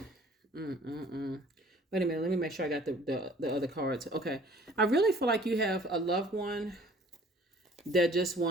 minute, let me make sure I got the other cards. Okay. I really feel like you have a loved one that just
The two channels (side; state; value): both; normal; correlation 0.53